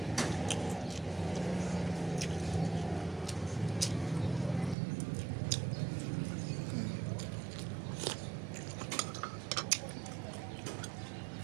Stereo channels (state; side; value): drops out; left; at 4.8 s